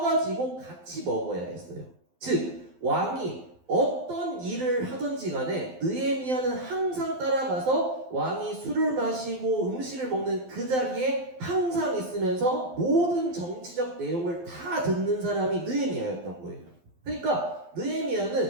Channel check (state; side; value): late; left; 12 ms